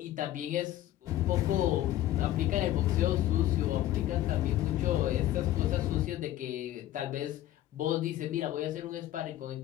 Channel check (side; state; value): right; quieter; 13.8 dB